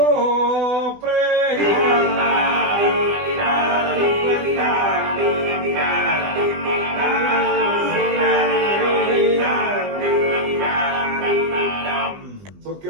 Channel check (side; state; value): left; late; 20 ms